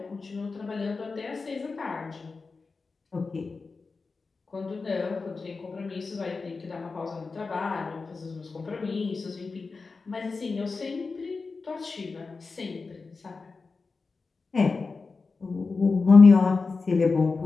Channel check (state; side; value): quieter; right; 4.3 dB